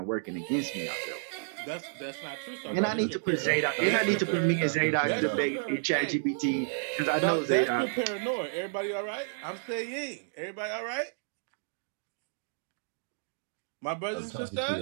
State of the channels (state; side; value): silent; left; digital silence